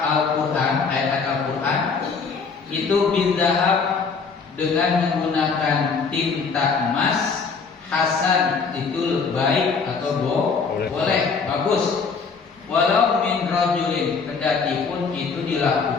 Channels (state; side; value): quieter; right; 5.1 dB